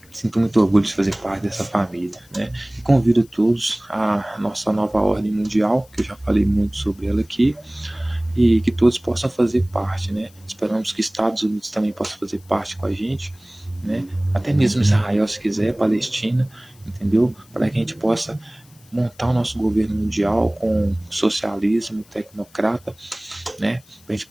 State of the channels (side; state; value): left; noise; hiss, 28 dB below the sound